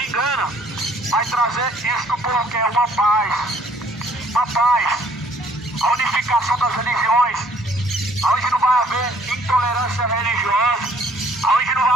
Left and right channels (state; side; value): normal; both; correlation 0.60